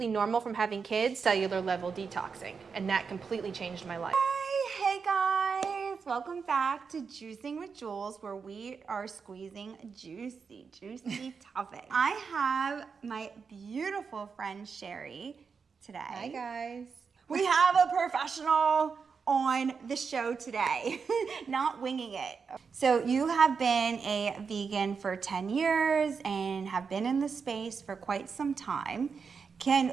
normal from having kids, cellular level detoxing, and that completely changed my life. Hey guys, welcome back to Juicing with Jules, where we are squeezing juicy topics. I have my beautiful friend Sherrie today. Hi guys. We have a professional on the show today, not winging it. So you have been a vegan for 10 years and have been in the space for quite some time.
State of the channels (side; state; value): left; quieter; 5.6 dB